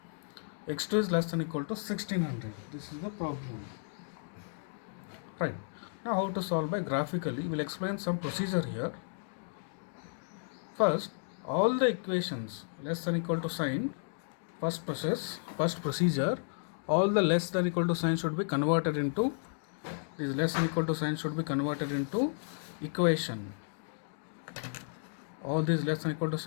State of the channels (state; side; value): silent; right; digital silence